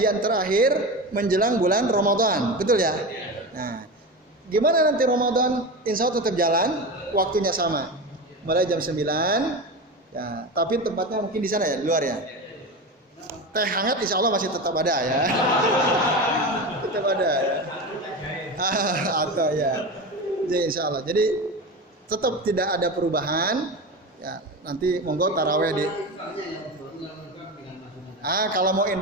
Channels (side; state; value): both; normal; correlation 0.24